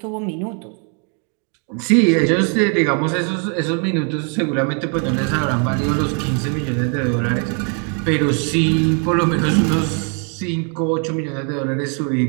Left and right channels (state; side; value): quieter; left; 39.8 dB